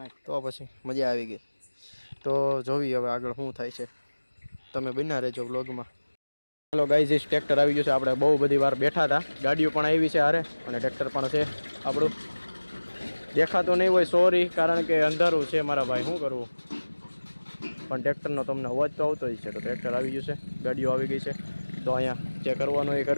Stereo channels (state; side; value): inverted; both; correlation -1.00